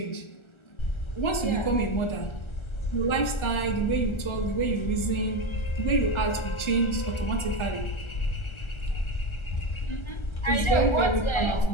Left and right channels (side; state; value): right; late; 1.3 ms